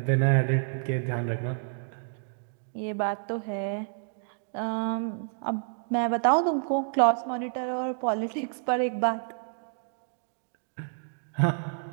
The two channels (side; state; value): left; silent; digital silence